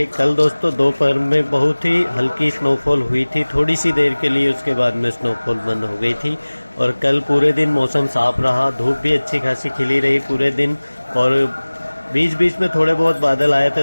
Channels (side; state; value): both; inverted; correlation -1.00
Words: कल दोस्तों दोपहर में बहुत ही हल्की स्नोफॉल हुई थी, थोड़ी सी देर के लिए, उसके बाद में स्नोफॉल बंद हो गई थी। और कल पूरे दिन मौसम साफ रहा, धूप भी अच्छी खासी खिली रही पूरे दिन, और बीच बीच में थोड़े बहुत बादल आए थे